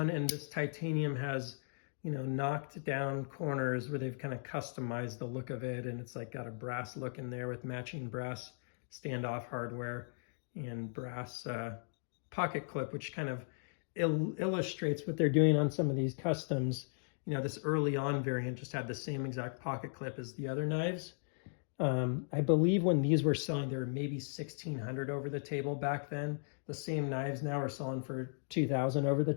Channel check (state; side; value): silent; right; digital silence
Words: And this titanium has you know, knocked down corners where they've kind of customized the look of it, and it's like got a brass look in there with matching brass standoff hardware and brass pocket clip, which kind of illustrates what they're doing on some of these customs. You know, this early on variant just had the same exact pocket clip as the other knives. I believe when these were selling, there were maybe 1,600 over the table back then. The same knives now are selling for 2,000 over the